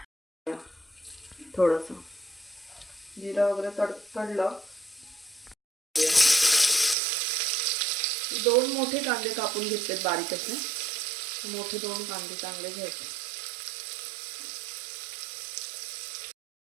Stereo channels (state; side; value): drops out; left; at 7.0 s